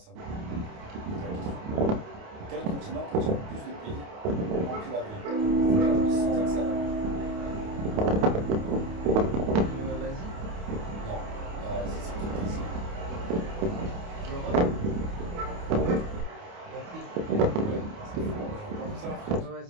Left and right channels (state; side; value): late; left; 28 ms